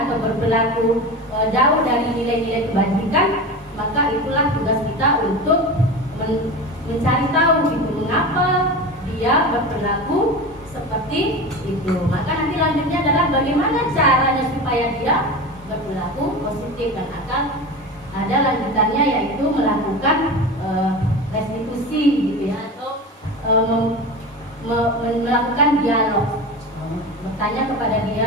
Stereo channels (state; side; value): normal; both; correlation 0.28